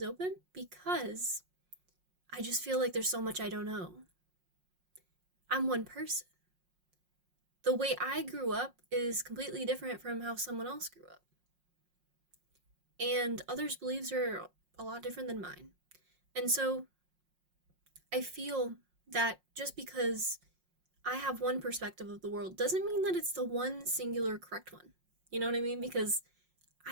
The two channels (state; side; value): late; left; 5.5 ms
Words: open because I just feel like there's so much I don't know. I'm one person. The way I grew up is completely different from how someone else grew up. And others' beliefs are a lot different than mine. And so I feel that just because I have one perspective of the world doesn't mean that it's the one singular correct one. You know what I mean? Because